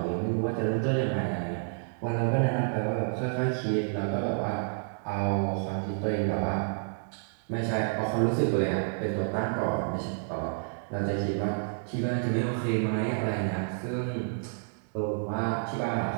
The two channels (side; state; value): left; silent; digital silence